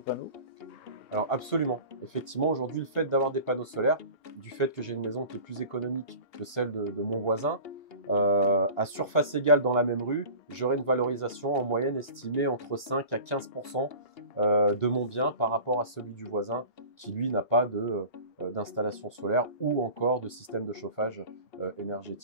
panneaux? Alors absolument. Effectivement, aujourd'hui, le fait d'avoir des panneaux solaires, du fait que j'ai une maison qui est plus économique que celle de mon voisin, à surface égale dans la même rue, j'aurai une valorisation en moyenne estimée entre 5 à 15% de mon bien par rapport à celui du voisin qui lui n'a pas d'installation solaire ou encore de système de chauffage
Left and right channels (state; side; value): late; right; 2.8 ms